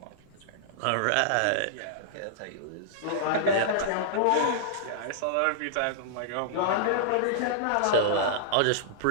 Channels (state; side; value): different; both; correlation -0.02